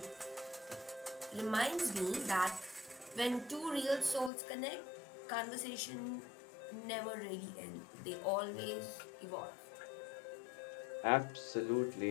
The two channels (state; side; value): drops out; right; at 4.3 s